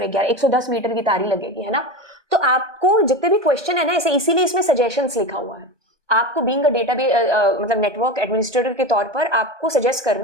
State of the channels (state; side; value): late; left; 1.2 ms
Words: 11 110 मीटर की तारी लगेगी, है ना। तो आपको जितने भी क्वेश्चन है ना, ऐसे इसीलिए इसमें सजेशंस लिखा हुआ है। आपको बीइंग अ डेटाबेस मतलब नेटवर्क एडमिनिस्ट्रेटर के तौर पर आपको सजेस्ट